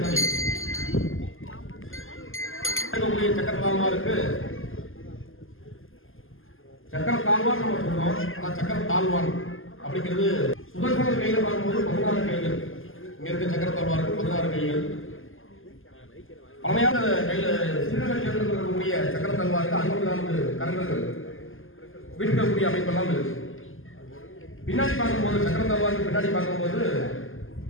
சக்கர தாழ்வாருக்கு சக்கர தாழ்வார் நம்ம சொல்றோம். ஆனா சக்கர தாழ்வார் அப்படிங்கிறது சுதர்சனர் கையில பார்க்கும்போது 16 கைகள். இங்க இருக்க சக்கர தாழ்வாருக்கு 16 கைகள். பழமையான கையில சிறுநகர் சேர்ந்து இருக்கக்கூடிய சக்கர தாழ்வாருக்கு 64 கரங்கள் வீட்டுக்கூடிய அமைப்பெல்லாம் இருக்கு. பின்னாடி பார்க்கும்போது சக்கர தாழ்வாருக்கு பின்னாடி பார்க்கும்போது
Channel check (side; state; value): right; late; 0.59 ms